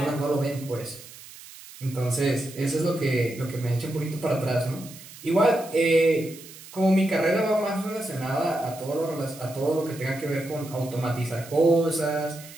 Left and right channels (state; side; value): noise; right; hiss, 17 dB below the sound